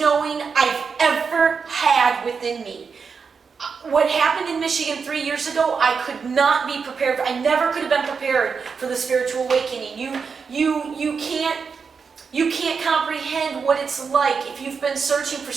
I've ever had within me. What happened in Michigan 3 years ago, I could not be prepared. I never could have been prepared for the spiritual awakening. You can't comprehend what it's like if you've been searching for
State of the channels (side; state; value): left; quieter; 5.6 dB